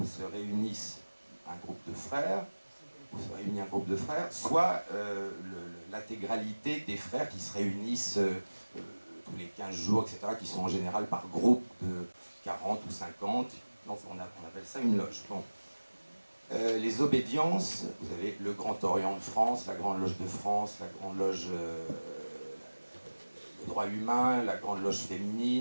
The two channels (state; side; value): inverted; both; correlation -1.00